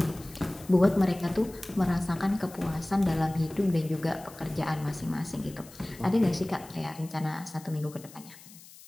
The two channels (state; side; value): noise; left; hiss, 20 dB below the sound